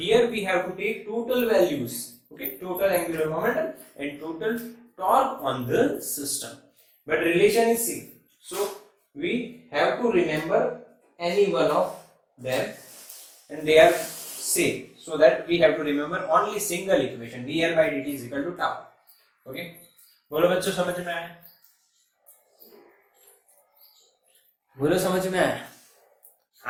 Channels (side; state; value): both; identical; correlation 1.00